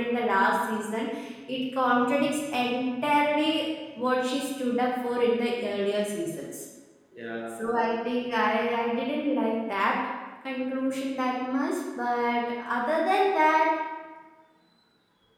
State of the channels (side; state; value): both; identical; correlation 1.00